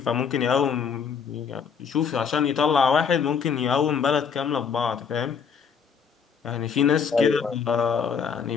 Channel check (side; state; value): right; quieter; 6.6 dB